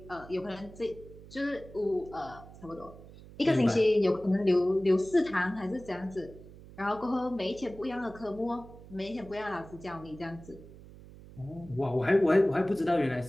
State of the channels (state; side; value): noise; right; hum, 18 dB below the sound